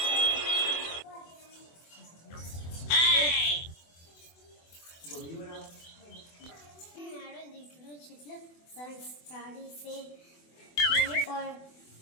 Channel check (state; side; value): late; right; 24 ms